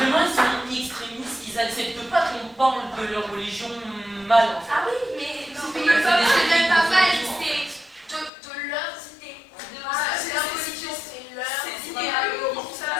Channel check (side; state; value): right; drops out; at 8.3 s